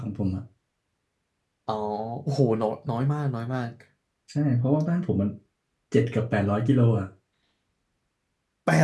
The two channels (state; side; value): identical; both; correlation 1.00